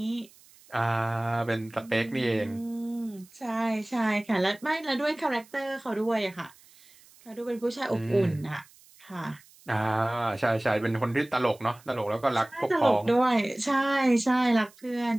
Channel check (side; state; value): right; noise; hiss, 26 dB below the sound